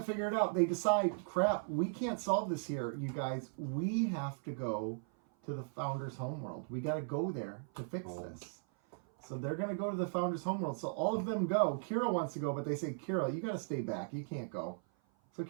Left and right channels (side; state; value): left; silent; 53 dB below the other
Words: figure it out. They decide, crap, we can't solve this here, you guys. We have to go to the Founder's homeworld. We got to go there to fix this. So they're going to go to the Founder's homeworld. So all of them go. Kira wants to go, but they say, Kira, you got to stay back. You can't go. So